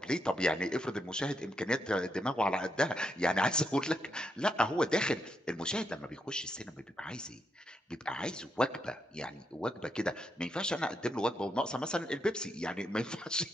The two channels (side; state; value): both; normal; correlation 0.81